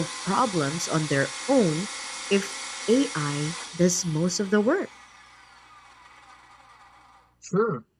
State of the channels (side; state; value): both; identical; correlation 1.00